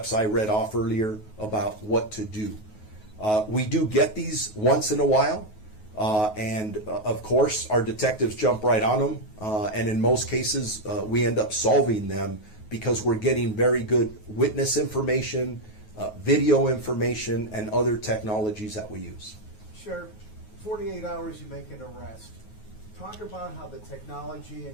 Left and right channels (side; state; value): right; late; 9.4 ms